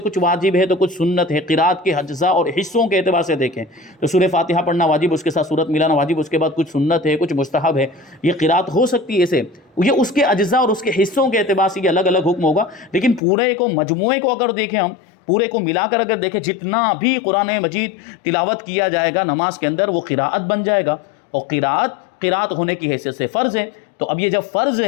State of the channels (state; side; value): drops out; right; at 13.2 s